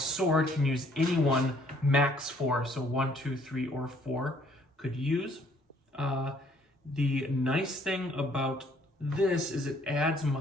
can use any one max 4. So 1, 2, 3, or 4 could use. The nice thing about this is it adds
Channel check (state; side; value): normal; both; correlation 0.62